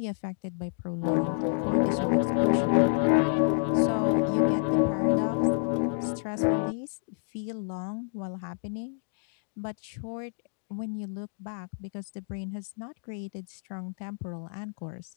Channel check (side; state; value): right; silent; digital silence